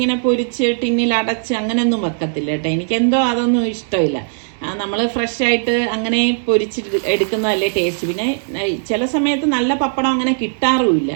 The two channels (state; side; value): silent; left; digital silence